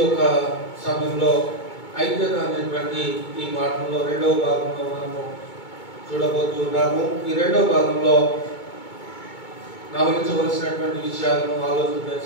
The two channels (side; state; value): right; late; 2.2 ms